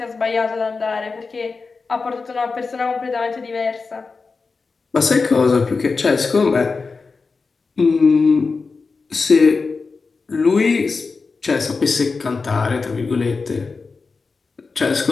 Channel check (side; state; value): right; quieter; 4.4 dB